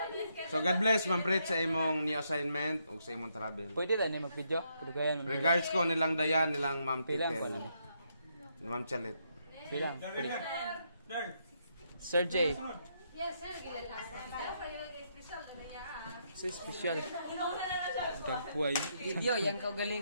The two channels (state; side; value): inverted; both; correlation -0.77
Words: So God bless Ma'am Pret sa imong new assignment o sa imong travel. Pwede tayo na mag-video. Kudugayan mo. Regards ko nilang Dayan, nilang Ma'am Pilang Titel. pala. Ma'am Chalet. Pilang. Sir J. Yes, sir. Sa special. Dagpuay. Video, yan